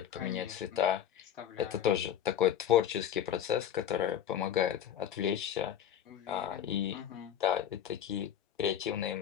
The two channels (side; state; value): right; quieter; 9.8 dB